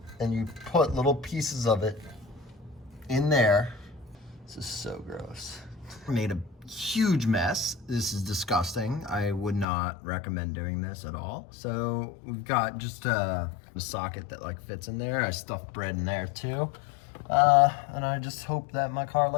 and you put little pieces of it in there. This is so gross. Made a huge mess. This is disgusting. I would not recommend doing this at all. So we've got just a socket that like fits in there. I stuffed bread in there too. And I just hope that my car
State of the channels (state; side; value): drops out; right; at 9.7 s